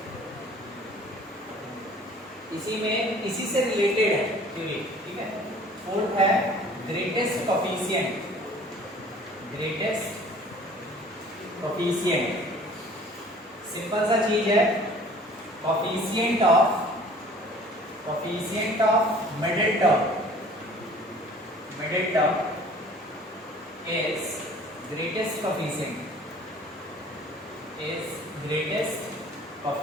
इसी में इसी से रिलेटेड है थ्योरी, ठीक है। फोर्थ है ग्रेटेस्ट कोफिशिएंट। सिंपल सा चीज है, coefficient of middle term is greatest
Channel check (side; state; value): both; normal; correlation 0.50